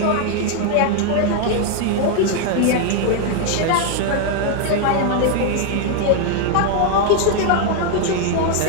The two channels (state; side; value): different; both; correlation 0.00